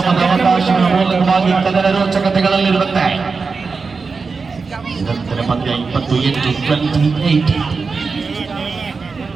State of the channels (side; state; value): left; quieter; 4.7 dB